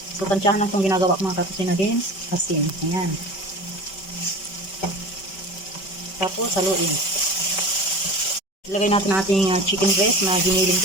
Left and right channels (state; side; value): late; right; 5.2 ms